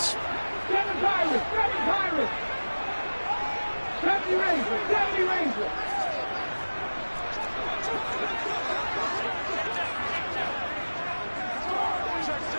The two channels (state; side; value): inverted; both; correlation -1.00